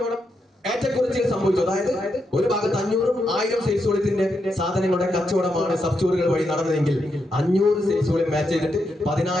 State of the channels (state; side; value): normal; both; correlation 0.83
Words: ഏറ്റക്കുറച്ചിൽ സംഭവിച്ചു, അതായത് ഒരു ഭാഗത്ത് 500ഉം 1000 സെയിൽസ് വോളിയത്തിന്റെ സാധനങ്ങളുടെ കച്ചവടമാണ് സബ് സ്റ്റോറുകൾ വഴി നടന്നതെങ്കിൽ 500 സെയിൽസ് വോളിയം മാച്ച് ചെയ്തിട്ട്